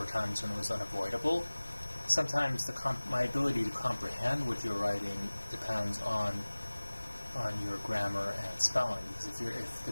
times when it was unavoidable. Sometimes my ability to comprehend what you're writing depends on your grammar and spelling, because if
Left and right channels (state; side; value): inverted; both; correlation -1.00